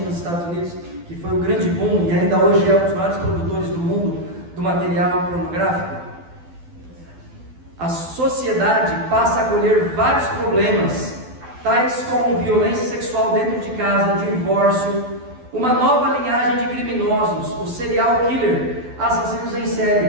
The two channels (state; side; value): late; left; 12 ms